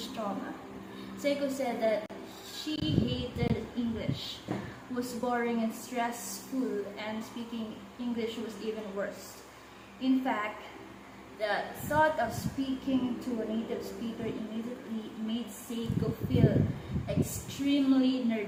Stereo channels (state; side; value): identical; both; correlation 1.00